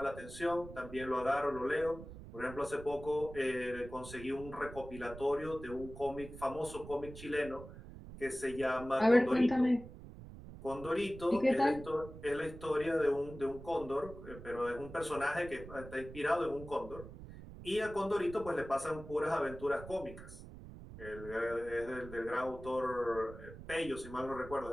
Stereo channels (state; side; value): noise; right; rumble, 14 dB below the sound